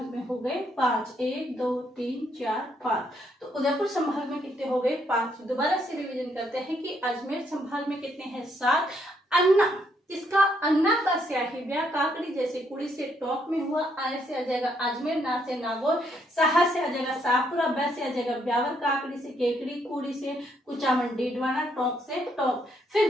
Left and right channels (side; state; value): both; normal; correlation 0.73